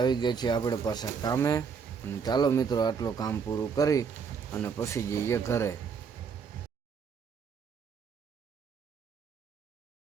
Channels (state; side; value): quieter; left; 6.1 dB